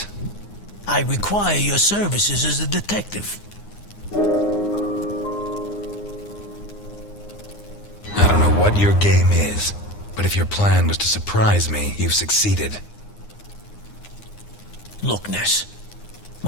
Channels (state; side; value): late; right; 9.7 ms